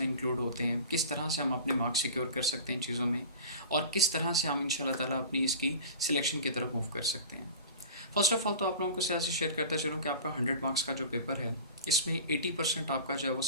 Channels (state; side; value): inverted; both; correlation -0.37